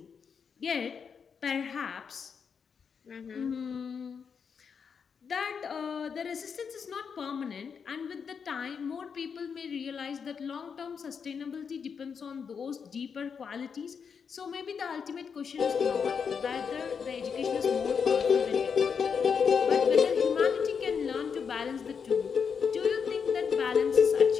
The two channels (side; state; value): right; quieter; 6.4 dB